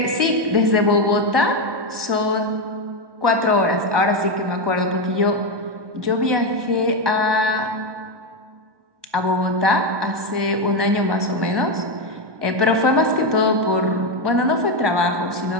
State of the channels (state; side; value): late; left; 1.1 ms